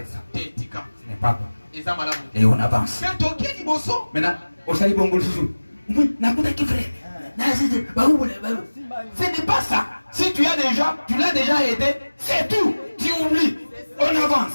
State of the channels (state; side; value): inverted; both; correlation -1.00